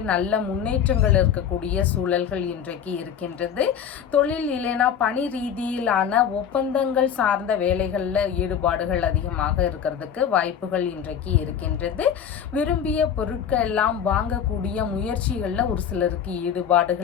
நல்ல முன்னேற்றங்கள் இருக்கக்கூடிய சூழல்கள் இன்றைக்கு இருக்கின்றது. தொழில் இல்லைன்னா பணி ரீதியிலான ஒப்பந்தங்கள் சார்ந்த வேலைகளில் ஈடுபாடுகள் அதிகமாக இருக்கிறதுக்கு வாய்ப்புகள் இன்றைக்கு இருக்கின்றது. விரும்பிய பொருட்கள் எல்லாம் வாங்கக்கூடிய முயற்சி முயற்சிகளில் ஒரு சிலருக்கு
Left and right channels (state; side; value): quieter; right; 8.3 dB